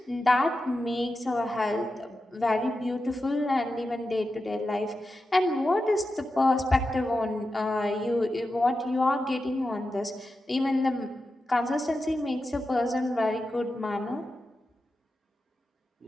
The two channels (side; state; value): both; normal; correlation 0.91